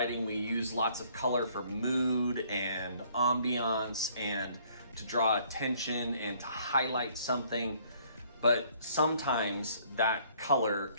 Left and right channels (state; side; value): inverted; both; correlation -0.62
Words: we use lots of color for mood and ambiance and to draw attention and to highlight something, but sometimes that color